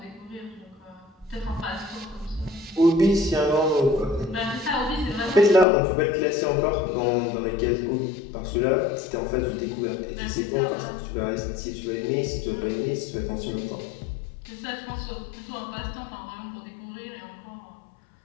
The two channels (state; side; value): drops out; right; at 5.7 s